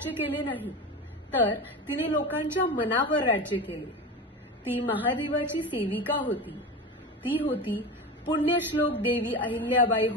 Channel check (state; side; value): normal; both; correlation 0.26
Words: केले नाही, तर तिने लोकांच्या मनावर राज्य केले. ती महादेवाची सेविका होती. ती होती पुण्यश्लोक देवी अहिल्याबाई